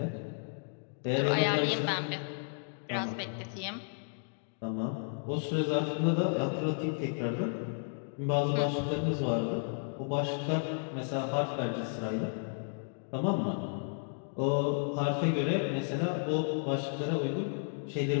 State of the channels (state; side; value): silent; right; digital silence